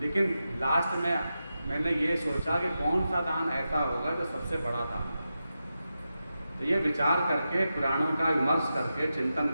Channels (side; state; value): both; inverted; correlation -0.90